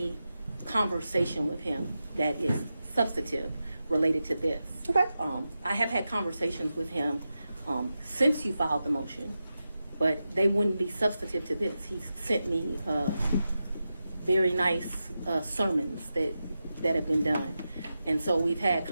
conversation with him that is substantive related to this. Okay. I have had conversations with him since you filed the motion, but they wouldn't be substantive to this. He sent me very nice sermons that have been done. And so we've had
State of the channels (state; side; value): inverted; both; correlation -0.91